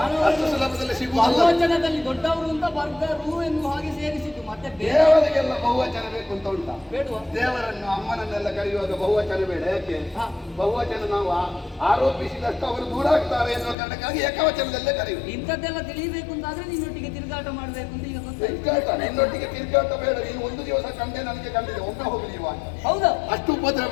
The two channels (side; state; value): right; drops out; at 13.8 s